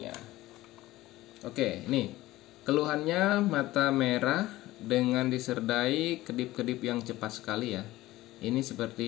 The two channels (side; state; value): right; quieter; 17.1 dB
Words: Oke, ini keluhannya mata merah dengan disertai kedip-kedip yang cepat sekali ya. Ini